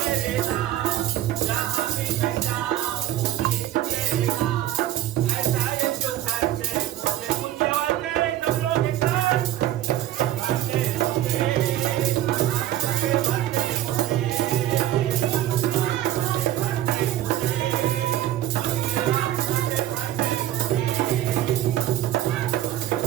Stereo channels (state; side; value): quieter; left; 13.1 dB